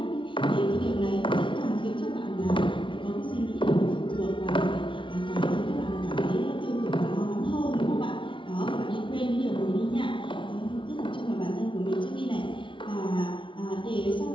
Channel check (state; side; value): late; right; 0.24 ms